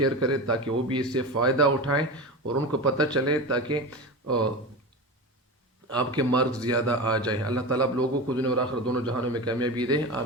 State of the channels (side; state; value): both; normal; correlation 0.26